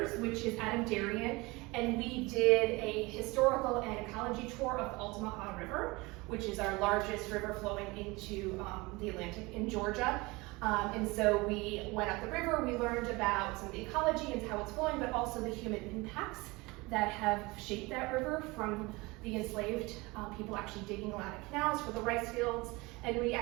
which is Adam Darien, and we did a historical and ecology tour of the Altamaha River, which is our largest river flowing into the Atlantic in Georgia. And so we went up the river, we learned about some of the ecology and how it's flowing, but also the human impacts that have shaped that river, from the enslaved people actually digging a lot of canals for the rice fields. And we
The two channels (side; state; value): left; quieter; 23.6 dB